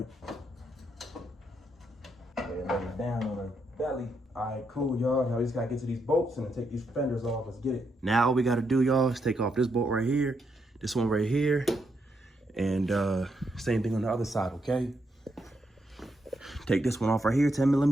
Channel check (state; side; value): normal; both; correlation 0.80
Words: And lay it down on the belly. All right, cool, y'all. Now we just gotta get to these bolts and then take these fenders off. Let's get it. Now all we gotta do, y'all, is take off this bolt right here, this one right here, and same thing on the other side, okay? Take this one off right here,